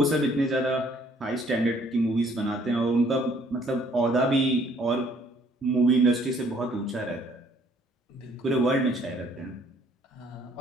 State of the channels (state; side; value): normal; both; correlation 0.62